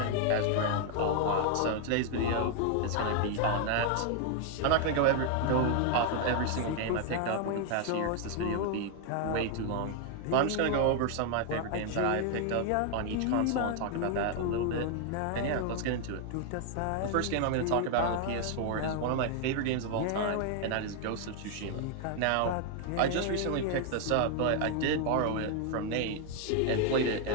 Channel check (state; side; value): different; both; correlation 0.00